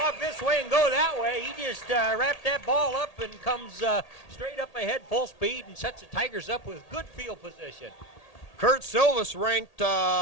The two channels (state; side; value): late; right; 1.8 ms